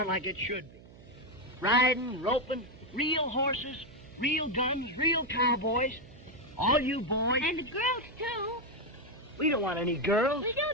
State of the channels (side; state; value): right; noise; hum, 21 dB below the sound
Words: like it should be. Riding, roping, real horses, real guns, real cowboys. All you boys... And the girls, too. We don't want any girls. We do,